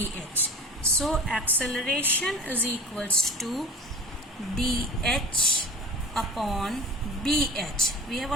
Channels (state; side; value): normal; both; correlation 0.37